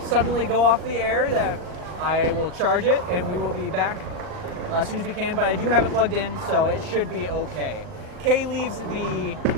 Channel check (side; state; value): left; late; 39 ms